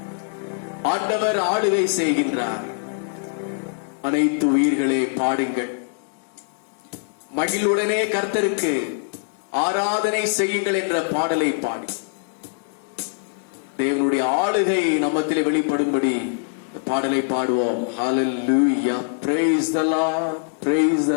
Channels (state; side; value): silent; right; digital silence